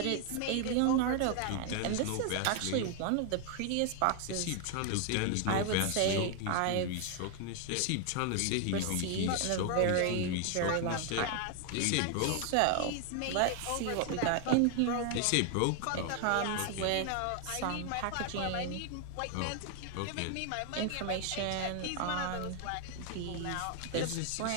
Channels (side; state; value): both; different; correlation 0.00